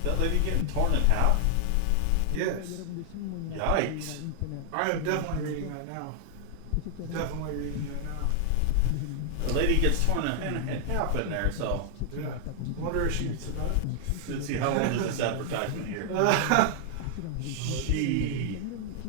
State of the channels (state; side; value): different; both; correlation 0.00